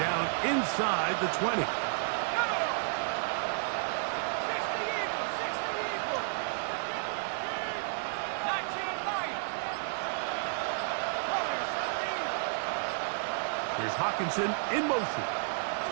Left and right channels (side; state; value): left; silent; digital silence